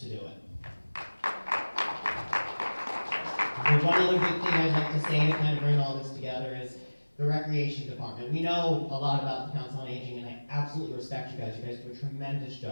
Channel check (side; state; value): both; inverted; correlation -1.00